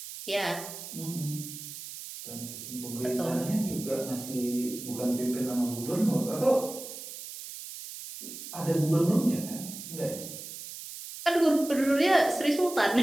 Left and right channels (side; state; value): right; noise; hiss, 11 dB below the sound